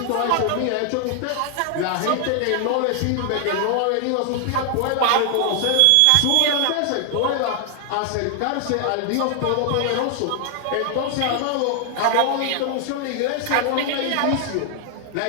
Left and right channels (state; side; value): different; both; correlation 0.00